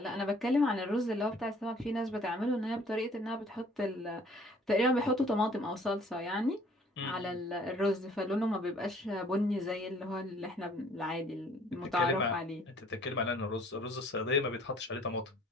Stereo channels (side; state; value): both; normal; correlation 0.56